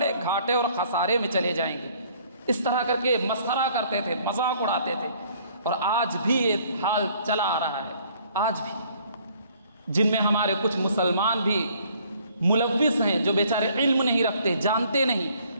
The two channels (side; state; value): both; inverted; correlation -0.60